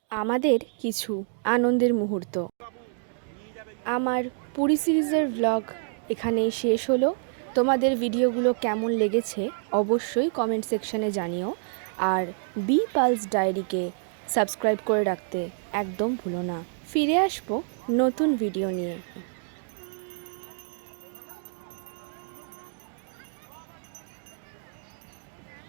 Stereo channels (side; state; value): left; silent; digital silence